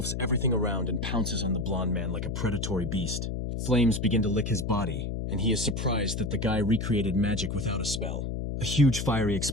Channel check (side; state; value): left; noise; hum, 3 dB below the sound